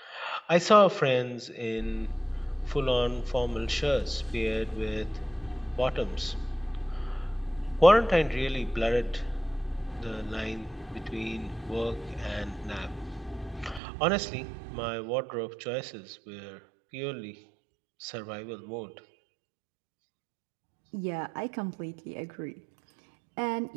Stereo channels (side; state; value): left; drops out; at 13.8 s